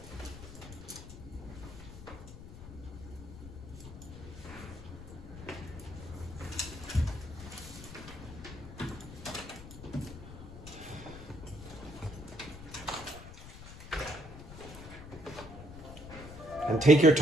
And take your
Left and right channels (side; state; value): left; noise; rumble, 13 dB below the sound